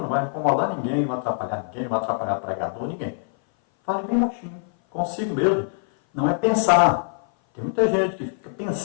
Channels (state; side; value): silent; right; 58 dB below the other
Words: não vai incomodar ninguém, não vai atrapalhar ninguém, não vai atrapalhar pregador, ninguém. Fale bem baixinho, consigo mesmo. Não é pensar. Tem muita gente que fica